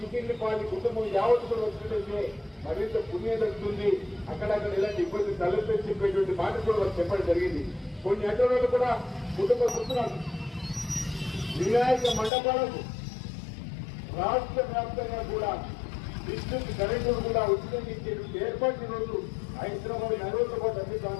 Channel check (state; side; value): drops out; right; at 12.3 s